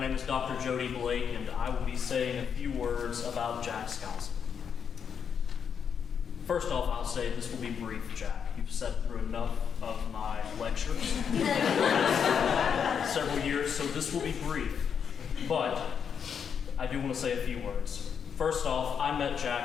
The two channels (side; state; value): right; quieter; 7.2 dB